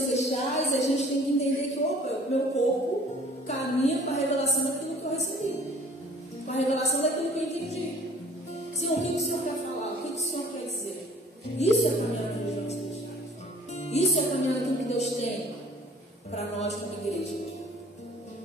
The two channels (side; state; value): both; normal; correlation 0.52